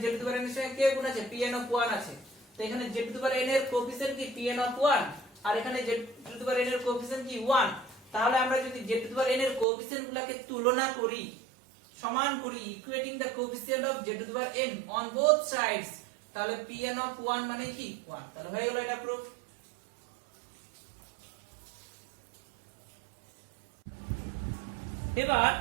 z to the power n এর সঙ্গে কে গুণ আছে pn of 1 আছে, তো এখানে z to the power n এর কোএফিসিয়েন্ট কি pn of 1 আর এখানে z to the power n এর কোএফিসিয়েন্ট কি 1, তাহলে আমরা যদি z to the power n এর কোএফিসিয়েন্ট গুলোকে তুলনা করি সমান করি equating the coefficient of z to the power n on both sides, তাহলে pn of 1 মানে কি 1, তাহলে হয়ে গেল এটা প্রুফ। এবার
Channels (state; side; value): drops out; left; at 9.7 s